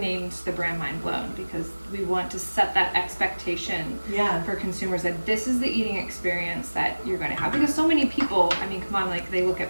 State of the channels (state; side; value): inverted; both; correlation -1.00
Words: the brand Mind Blown, because we want to set that expectation for consumers that this is the eating experience that you're going to have. Because so many people, I mean, come on, like they look